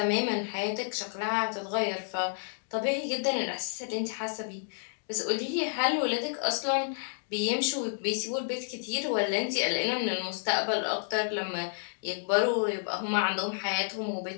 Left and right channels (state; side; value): silent; right; digital silence